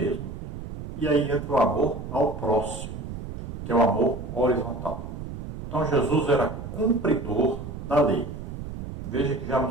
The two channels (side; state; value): right; noise; rumble, 9 dB below the sound